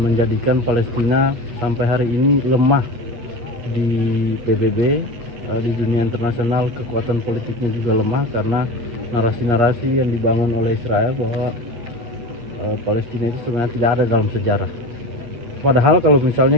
menjadikan Palestina sampai hari ini lemah di PBB, di dunia internasional. Kekuatan politiknya juga lemah karena narasi-narasi yang dibangun oleh Israel bahwa Palestina itu sebenarnya tidak ada dalam sejarah. Padahal kalau misalnya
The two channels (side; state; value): left; late; 8.5 ms